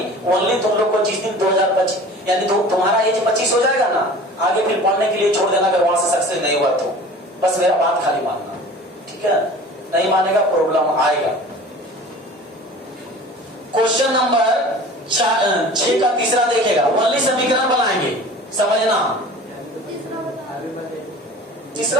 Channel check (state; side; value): normal; both; correlation 0.41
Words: ओनली तुम लोग को जिस दिन 2025 यानी तुम्हारा एज 25 हो जाएगा ना, आगे फिर पढ़ने के लिए छोड़ देना अगर वहां से सक्सेस नहीं हुआ तो। बस मेरा बात खाली मानना, ठीक है? नहीं मानेगा प्रॉब्लम आएगा। क्वेश्चन नंबर 6 का तीसरा देखेगा, ओनली समीकरण बनाएंगे, समझना।